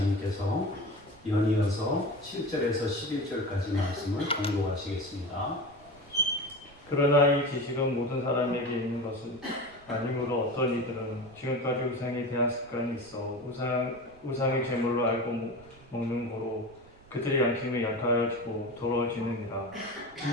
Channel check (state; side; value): noise; right; rumble, 25 dB below the sound